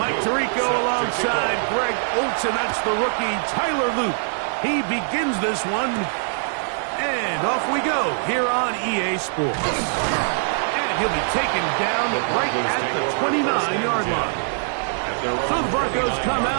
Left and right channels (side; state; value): left; silent; digital silence